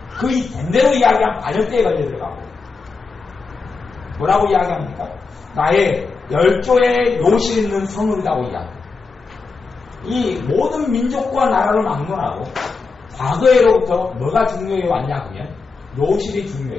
그 된대로 이야기한 반역죄에 걸려 들어가고 뭐라고 이야기합니까? 나의 열조의 묘실 있는 성읍이라고 이야기합니다. 이 모든 민족과 나라를 막론하고 과거에로부터 뭐가 중요해 왔냐 그러면 묘실이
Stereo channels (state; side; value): quieter; right; 4.4 dB